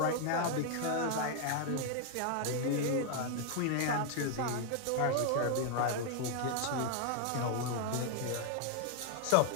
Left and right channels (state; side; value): different; both; correlation 0.00